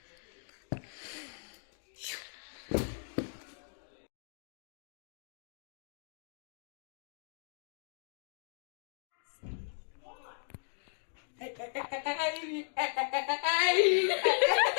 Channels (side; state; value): right; silent; digital silence